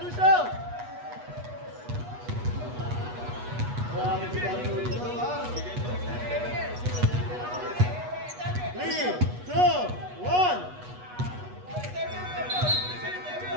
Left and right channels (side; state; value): left; late; 8.2 ms